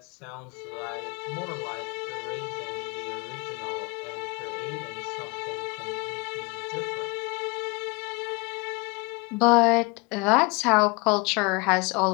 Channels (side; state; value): right; quieter; 28.3 dB